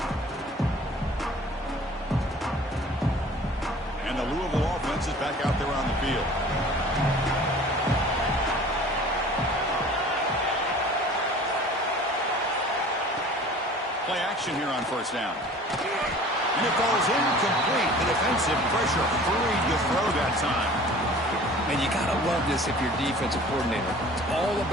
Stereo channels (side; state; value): both; normal; correlation 0.46